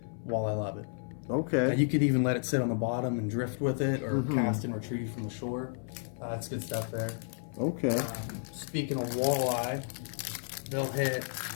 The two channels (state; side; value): silent; right; 56 dB below the other